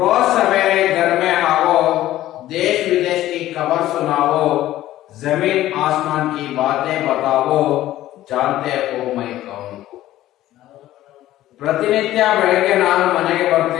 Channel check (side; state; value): right; quieter; 14.4 dB